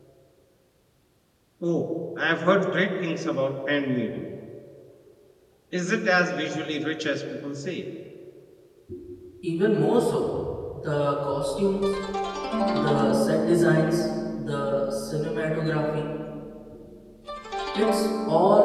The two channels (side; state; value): both; identical; correlation 1.00